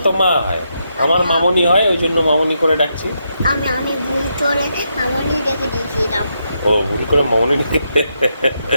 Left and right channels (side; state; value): both; inverted; correlation -0.81